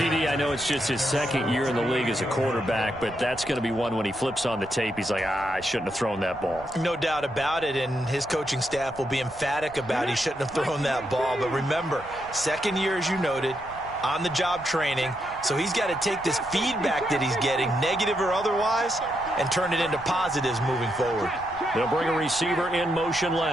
I know it's just his second year in the league as a quarterback, but that's going to be one when he flips on the tape, he's like, I shouldn't have thrown that ball. No doubt about it, and his coaching staff will be emphatic about he shouldn't have thrown that ball. But remember, second year, as you noted, on-the-job training, so he's got to take this feedback that he's getting, negative or otherwise, and turn it into positives moving forward. They'll bring a receiver in motion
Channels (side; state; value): right; noise; rumble, 20 dB below the sound